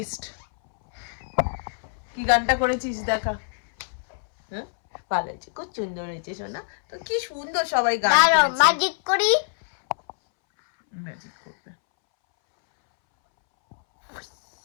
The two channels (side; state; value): right; silent; 62 dB below the other